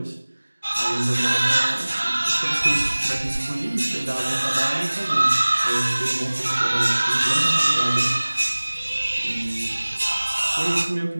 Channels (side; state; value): both; inverted; correlation -1.00